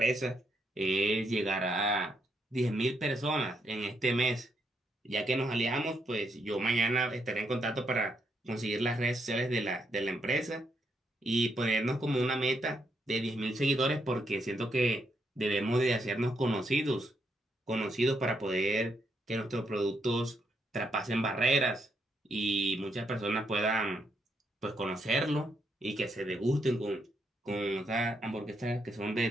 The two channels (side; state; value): both; normal; correlation 0.77